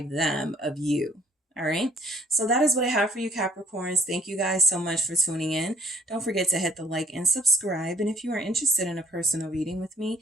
them of you. All right. So that is what I have for you, Capricorns. Thank you guys so much for tuning in. Don't forget to hit the like and subscribe. And if you are interested in a personal reading with me,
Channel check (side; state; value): both; normal; correlation 0.60